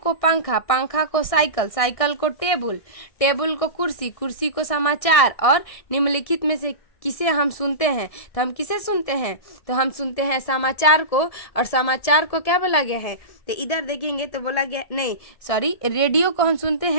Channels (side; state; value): right; late; 1.6 ms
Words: पंखा, पंखा को साइकिल, साइकिल को टेबल, टेबल को कुर्सी, कुर्सी को समाचार और निम्नलिखित में से किसे हम सुनते हैं? तो हम किसे सुनते हैं? तो हम सुनते हैं समाचार को। और समाचार को क्या बोला गया है? तो इधर देखेंगे तो बोला गया, नहीं सॉरी, रेडियो को हम सुनते